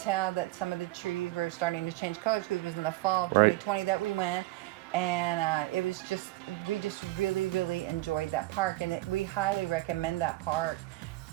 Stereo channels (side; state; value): left; quieter; 18.5 dB